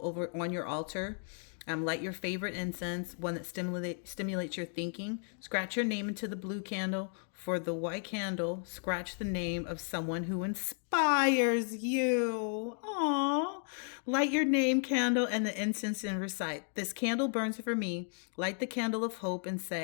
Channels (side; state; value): right; silent; 55 dB below the other